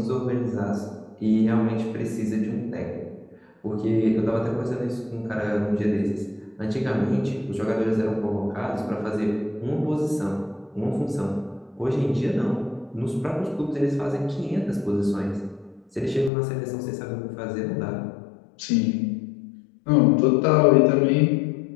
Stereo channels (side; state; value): right; drops out; at 16.3 s